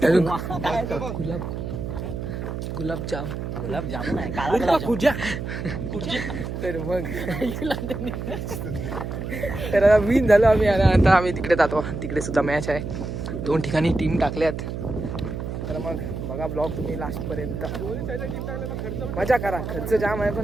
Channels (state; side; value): noise; right; hum, 5 dB below the sound